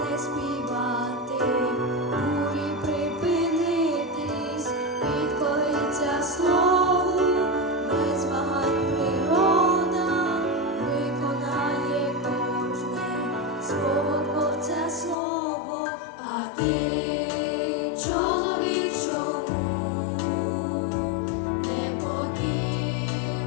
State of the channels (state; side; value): drops out; right; at 15.2 s